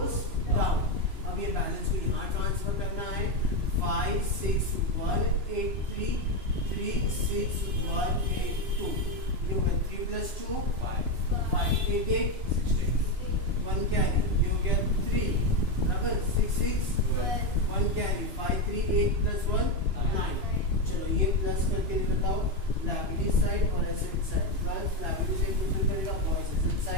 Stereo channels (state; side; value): late; left; 2.9 ms